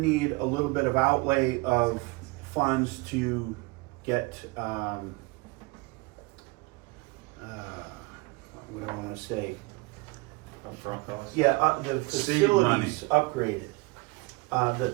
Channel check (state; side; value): quieter; left; 25.6 dB